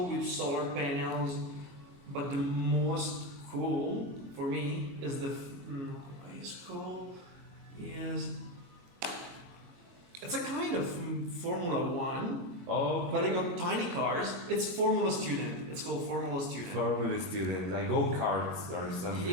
with solar panels. But the most cool for me is it's a kind of Formula One, Oh. but I got tiny cars. It's Formula Student. It's called Formula Student. Formula student, like go-karts or something.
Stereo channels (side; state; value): left; late; 22 ms